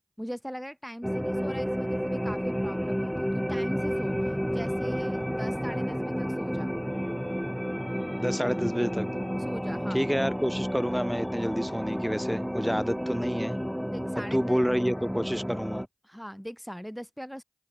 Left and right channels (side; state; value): both; identical; correlation 1.00